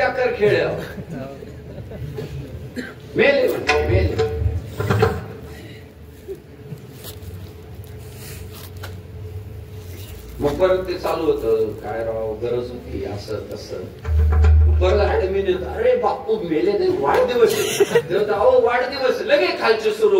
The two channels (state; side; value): identical; both; correlation 1.00